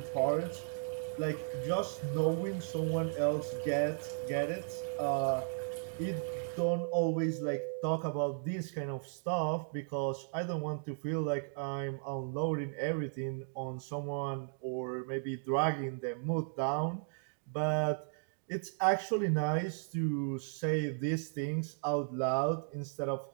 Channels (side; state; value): left; silent; digital silence